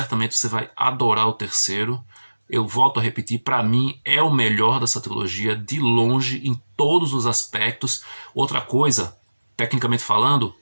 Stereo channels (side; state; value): both; inverted; correlation -1.00